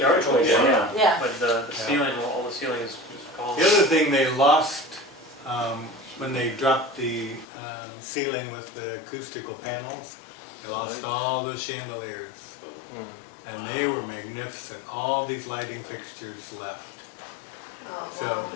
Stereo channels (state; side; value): drops out; right; at 7.5 s